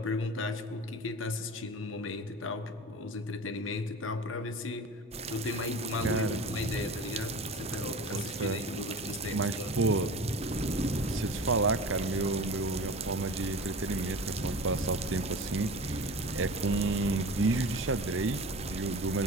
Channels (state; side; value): normal; both; correlation 0.35